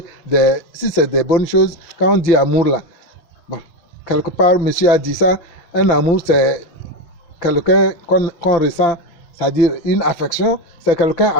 si c'est des bonnes choses. Quand on dit amour là, bon, quelque part, monsieur a dit ça, un amour c'est quelqu'un qu'on ressent, c'est-à-dire une affection, c'est quelqu'un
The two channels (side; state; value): right; late; 6.1 ms